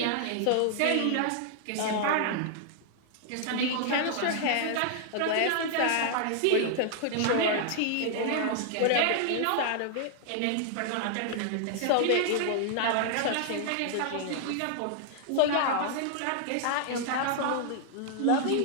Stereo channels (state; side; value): different; both; correlation -0.01